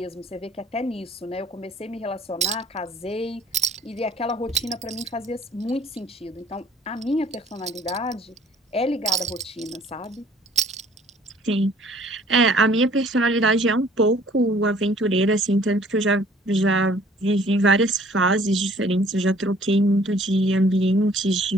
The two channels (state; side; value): normal; both; correlation 0.56